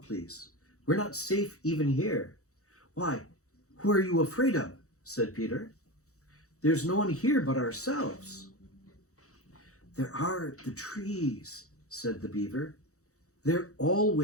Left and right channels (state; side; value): late; right; 0.65 ms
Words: please. We're not safe even here." "Why, who are you afraid of?" said Peter. "There's no one here but ourselves." "There are the trees," said the beaver. "They're